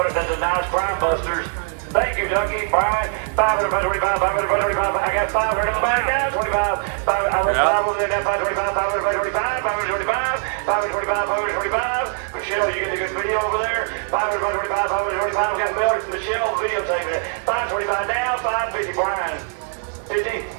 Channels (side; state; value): left; silent; 58 dB below the other